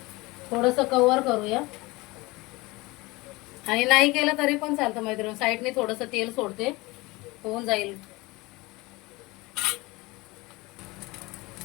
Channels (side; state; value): right; quieter; 22.6 dB